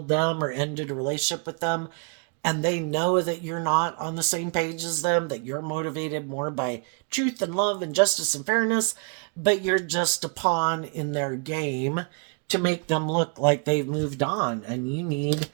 them or ended a relationship with them, and they know that you're not on the same page as them, that you're motivated more by truth and love and justice and fairness, but you're just a pawn in their game to make them look like they've moved on. And you need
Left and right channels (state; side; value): quieter; left; 37.9 dB